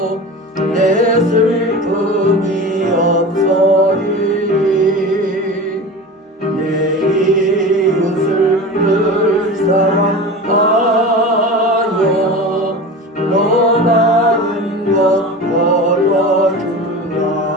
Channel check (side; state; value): both; normal; correlation 0.32